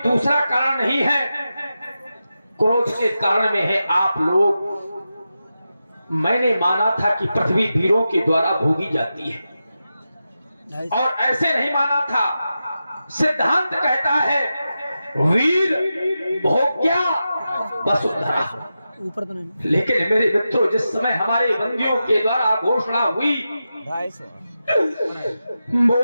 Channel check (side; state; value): both; inverted; correlation -0.91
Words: दूसरा कारण नहीं है, क्रोध के कारण में है आप लोग। मैंने माना था कि पृथ्वी वीरों के द्वारा भोगी जाती है, और ऐसे नहीं माना था। सिद्धांत कहता है वीर भोग्या वसुंधरा। लेकिन मेरे मित्रों, जिस समय हमारे बंदियों के द्वारा घोषणा हुई,